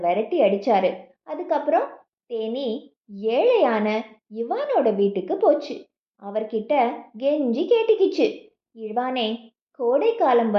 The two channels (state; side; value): identical; both; correlation 1.00